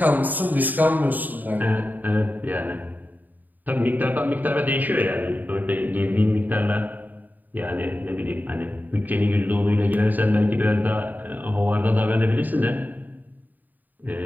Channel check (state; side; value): late; left; 0.085 ms